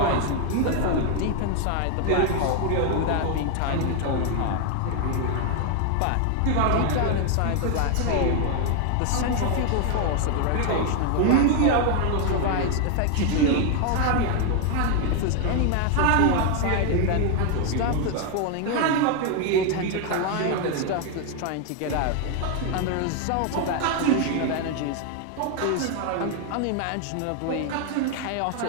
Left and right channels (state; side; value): different; both; correlation 0.01